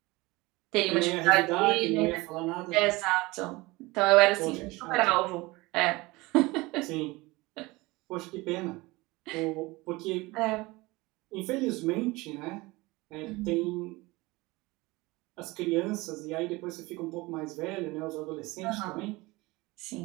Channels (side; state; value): left; quieter; 22.1 dB